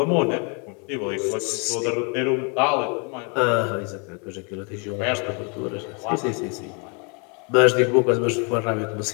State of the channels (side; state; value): right; quieter; 35.6 dB